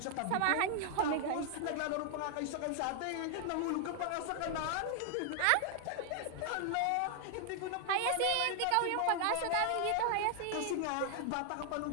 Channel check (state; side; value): different; both; correlation 0.00